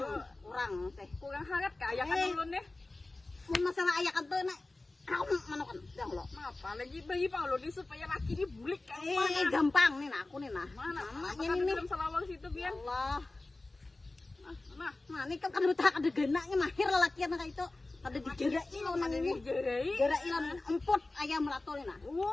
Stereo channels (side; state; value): right; quieter; 3.0 dB